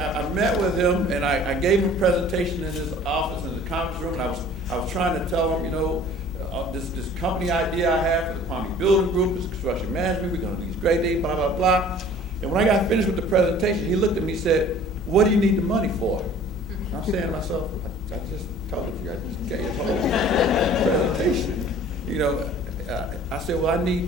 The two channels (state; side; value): normal; both; correlation 0.49